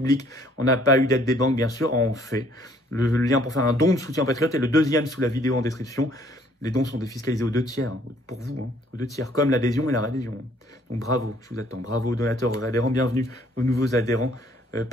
On n'a pas eu d'aide des banques, bien sûr. On fait. Le lien pour faire un don de soutien en Patriotes est le deuxième sous la vidéo en description. Les dons sont défiscalisés aux 2 tiers, hein, pour vous, hein, aux 2 tiers, comme l'adhésion et la réadhésion. Donc bravo, je vous attends. Bravo aux donateurs, aux adhérents, bienvenue aux nouveaux adhérents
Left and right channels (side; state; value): both; normal; correlation 0.61